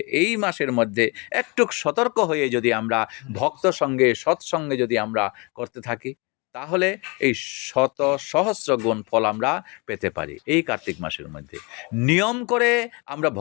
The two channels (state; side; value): quieter; right; 29.3 dB